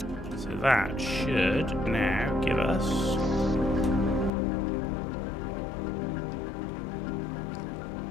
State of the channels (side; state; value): right; drops out; at 4.3 s